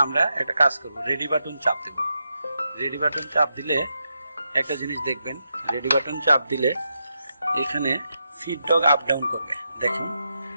আমরা একটা কাজ করব, রেডি বাটন চাপ দেব। রেডি বাটন চাপ দিলে একটা জিনিস দেখবেন, রেডি বাটন চাপ দিলে এখানে ফিড ডগ আপ ডাউন করবে। দেখুন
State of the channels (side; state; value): both; inverted; correlation -0.85